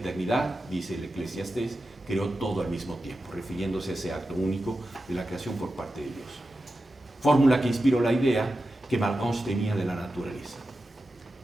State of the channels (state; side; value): normal; both; correlation 0.92